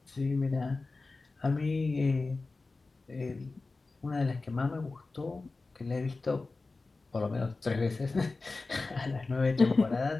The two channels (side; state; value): right; quieter; 3.6 dB